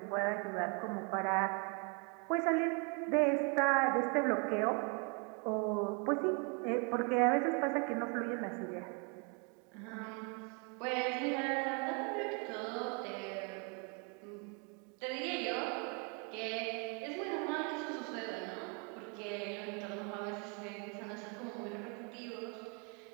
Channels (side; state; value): left; quieter; 35.3 dB